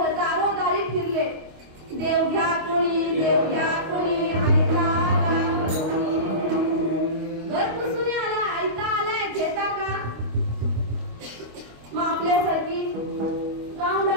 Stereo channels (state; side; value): late; left; 25 ms